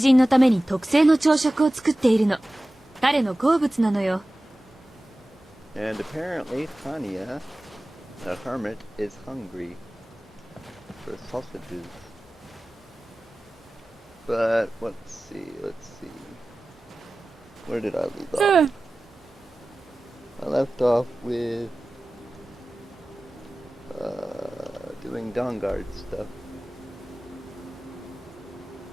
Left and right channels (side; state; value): both; normal; correlation 0.97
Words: のために特製の朝食を作っているの。彼の好物なのよ。And apparently Tanya, the hermit, is hungry for sausages. But let's see. Where did I leave off? I left off with doing Dawnguard stuff.